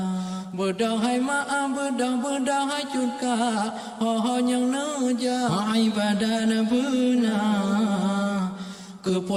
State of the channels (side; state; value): both; identical; correlation 1.00